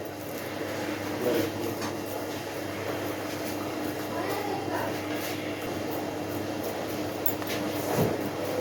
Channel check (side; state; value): both; identical; correlation 1.00